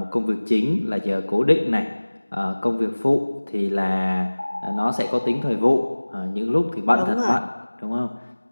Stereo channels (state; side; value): inverted; both; correlation -1.00